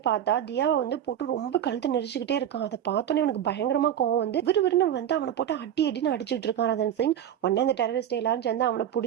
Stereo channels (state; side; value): quieter; left; 10.2 dB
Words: பார்த்தா தியாவை வந்து போட்டு ரொம்ப கழுத்து நெரிச்சுக்கிட்டே இருக்கான். அதை பார்த்தோன்னே அவனுக்கு பயங்கரமா கோவம் வந்து விறுவிறுன்னு வந்து அவனை போட்டு அடின்னு அடிச்சுட்டு இருக்கான் ரதன் சிங். உடனே அந்த டெரரிஸ்ட் எல்லாரும் சேர்ந்து அவனை